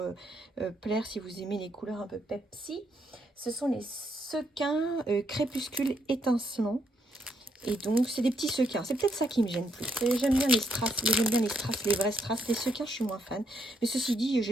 plaire si vous aimez les couleurs un peu Pepsi. Ce sont les sequins crépuscule étincelant. Et donc, c'est des petits sequins. C'est peut-être ça qui me gêne plus. J'aime bien les strass, les vrais strass. Les sequins, je suis moins fan. Mais ceci dit,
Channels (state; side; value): normal; both; correlation 0.75